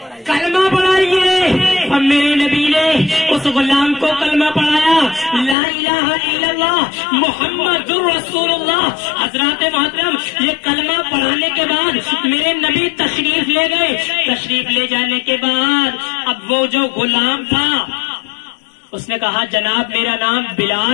کلمہ پڑھائیے. اور میرے نبی نے اس غلام کو کلمہ پڑھایا, لا الہ الا اللہ محمد رسول اللہ. حضرات محترم یہ کلمہ پڑھانے کے بعد میرے نبی تشریف لے گئے. تشریف لے جانے کے بعد اب وہ جو غلام تھا اس نے کہا جناب میرا نام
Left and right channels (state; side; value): drops out; right; at 5.6 s